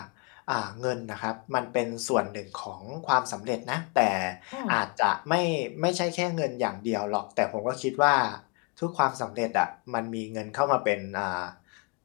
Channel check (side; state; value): right; quieter; 31.8 dB